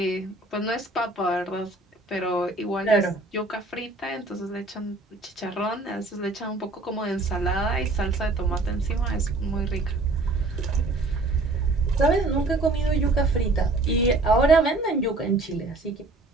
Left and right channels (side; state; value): left; quieter; 3.0 dB